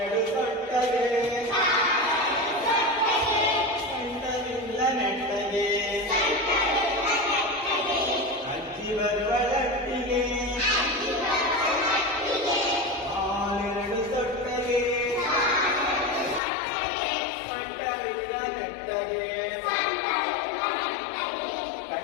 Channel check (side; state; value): right; drops out; at 16.4 s